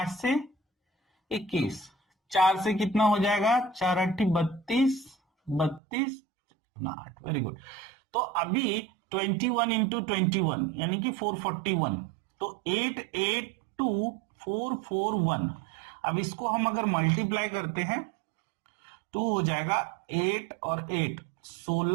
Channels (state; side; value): drops out; left; at 5.8 s